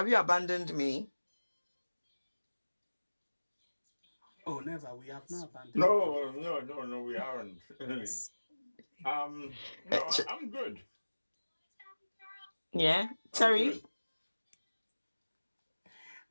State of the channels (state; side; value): inverted; both; correlation -1.00